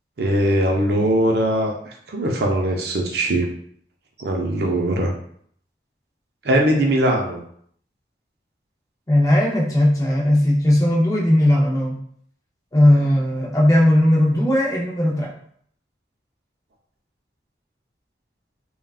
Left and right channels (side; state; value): both; normal; correlation 0.81